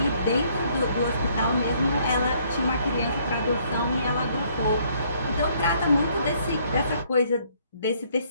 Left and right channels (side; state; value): both; inverted; correlation -0.65